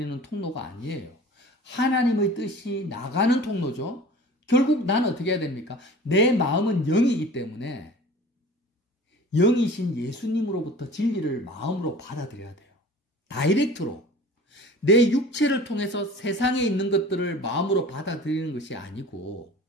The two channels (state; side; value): normal; both; correlation 0.42